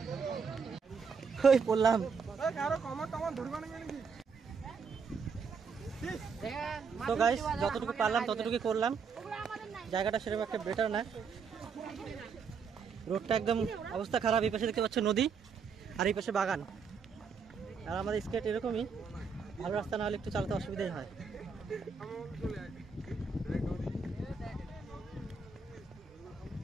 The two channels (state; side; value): quieter; left; 5.6 dB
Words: ওই পড়লাম। তো গাইস যতটুকু পারলাম ততটুকু করলাম। জায়গাটা সেরকম একটা বেটার না, রোডটা একদম অবস্থা খারাপ। এই পাশে দেখতে পাচ্ছ নদী, আর এই পাশে বাগান। আর আমাদের স্কেট এরকমই, ভালো রাস্তা না হলে একটু চালাতে অসুবিধাই হয়।